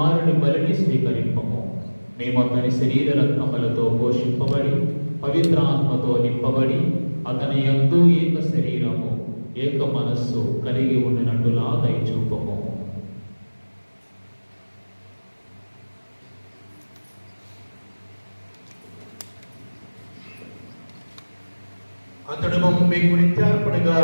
బలిని స్వీకరింపము. మేము అతని శరీర రత్నములతో పోషింపబడి పవిత్ర ఆత్మతో నింపబడి అతని యందు ఏక శరీరము ఏక మనస్సు కలిగి ఉండినట్టులా దయచూపము. అతడు మమ్మ మీకు నిత్యార్పణగా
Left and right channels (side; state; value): both; inverted; correlation -1.00